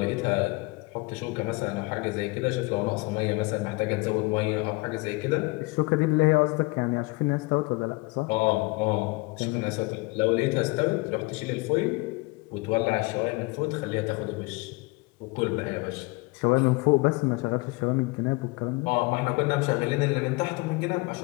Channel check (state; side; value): quieter; right; 25.1 dB